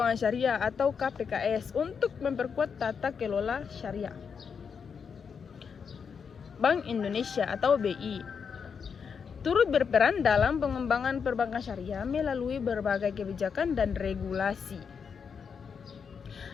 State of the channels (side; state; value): right; quieter; 6.4 dB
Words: syariah atau KPKS untuk memperkuat tata kelola syariah. Bank Indonesia atau BI turut berperan dalam pengembangan perbankan syariah melalui berbagai kebijakan dan regulasi.